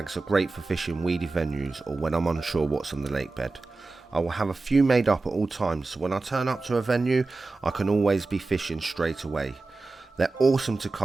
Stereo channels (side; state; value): left; quieter; 3.6 dB